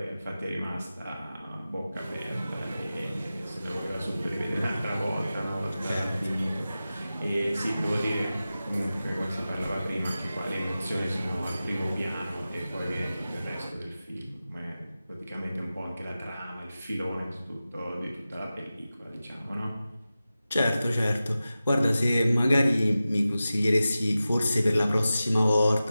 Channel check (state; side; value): inverted; both; correlation -0.94